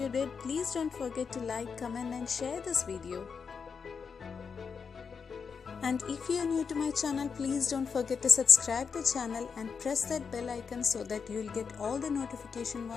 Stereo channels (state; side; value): quieter; right; 5.9 dB